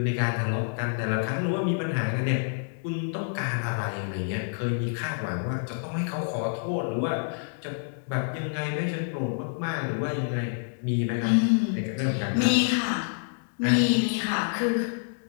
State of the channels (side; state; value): right; silent; digital silence